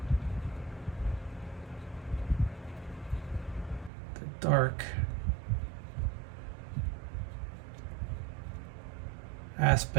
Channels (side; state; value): left; drops out; at 3.9 s